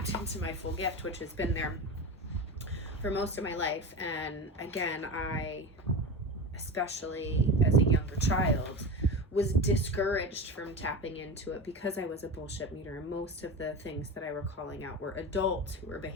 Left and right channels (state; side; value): normal; both; correlation 0.26